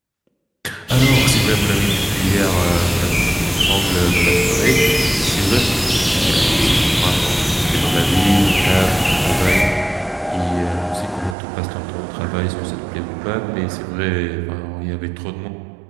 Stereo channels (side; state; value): left; drops out; at 11.4 s